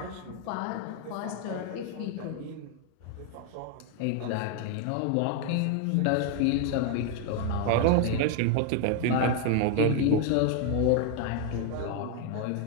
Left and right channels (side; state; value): both; different; correlation 0.00